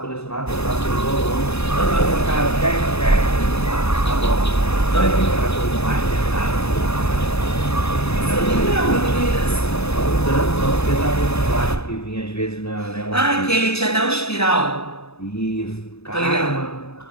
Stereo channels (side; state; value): right; late; 0.79 ms